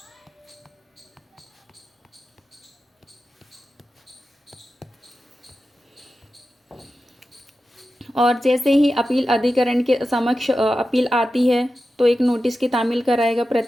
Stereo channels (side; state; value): both; normal; correlation 0.92